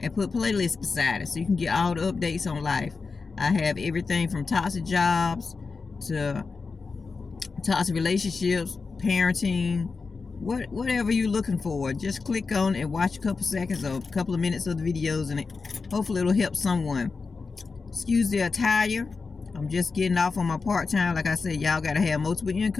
and put playlist beside it so you can get all the updates on life. I have everything from toxic jobs to toxic relationships, parenting, whatever you're looking for. Just click on and watch a couple seconds or a couple of minutes of the videos, and hopefully it'll help someone. Excuse the attire. I'm just getting off on my part-time. Like I said, y'all gotta have multiple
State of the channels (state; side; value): quieter; right; 4.5 dB